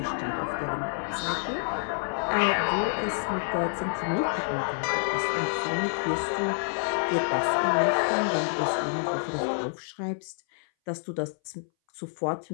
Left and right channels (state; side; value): silent; right; 59 dB below the other